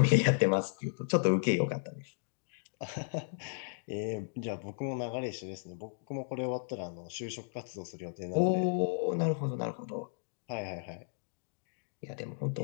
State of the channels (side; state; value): right; silent; digital silence